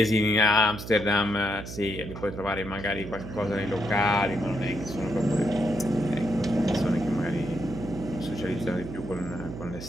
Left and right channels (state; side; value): noise; right; hum, 10 dB below the sound